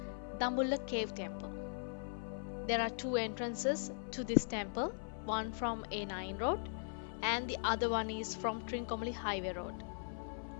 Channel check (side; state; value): right; silent; 51 dB below the other